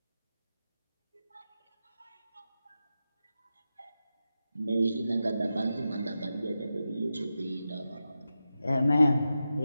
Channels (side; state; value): both; inverted; correlation -0.91